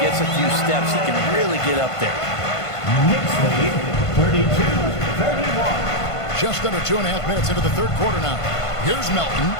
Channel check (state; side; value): late; right; 1.5 ms